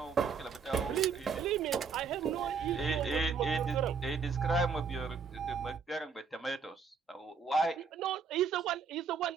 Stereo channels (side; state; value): left; quieter; 5.7 dB